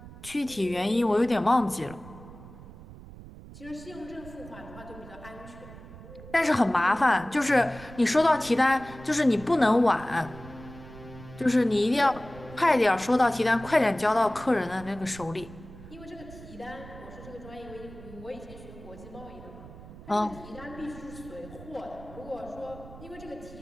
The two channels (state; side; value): noise; right; rumble, 16 dB below the sound